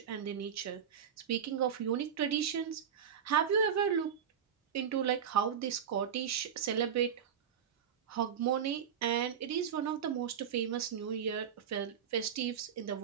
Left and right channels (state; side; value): quieter; left; 8.1 dB